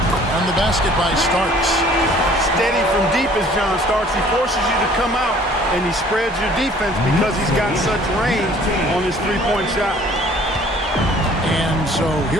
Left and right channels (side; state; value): both; normal; correlation 0.54